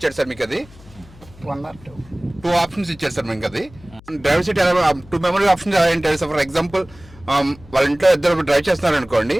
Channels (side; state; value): left; noise; hum, 23 dB below the sound